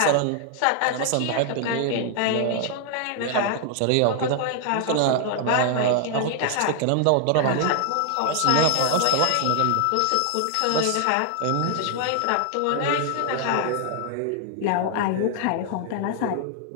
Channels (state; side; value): different; both; correlation 0.00